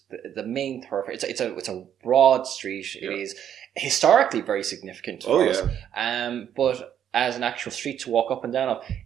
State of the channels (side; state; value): left; quieter; 9.6 dB